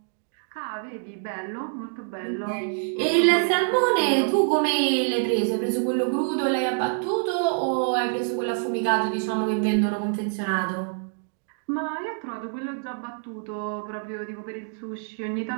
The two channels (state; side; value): silent; left; digital silence